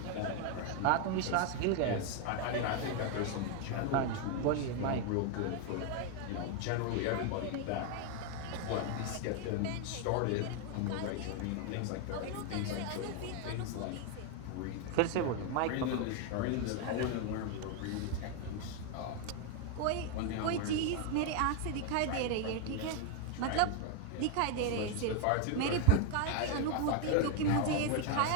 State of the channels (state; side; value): different; both; correlation 0.01